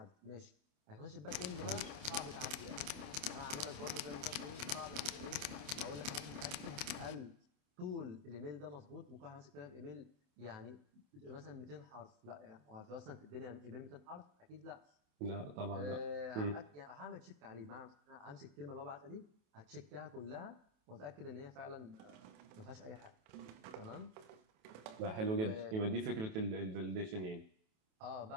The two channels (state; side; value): late; left; 28 ms